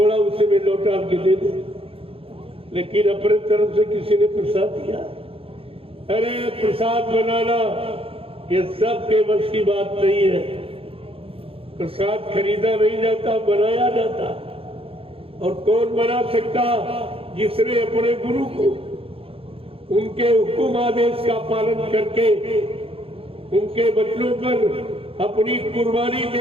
उसे में लौटा के दे दे, लेकिन अपने तरफ से किसी ने प्रसाद दिया? अरे प्रसाद बनाना ये सबके बस की बात नहीं है। प्रसाद खरीदा नहीं जाता, बनाया जाता। और कौन बना सकता? जिसने अपने गुरु को उनके हुक्म आदेश का पालन करके उनके बच्चों पर अपनी कुर्बानी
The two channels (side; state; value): left; late; 0.27 ms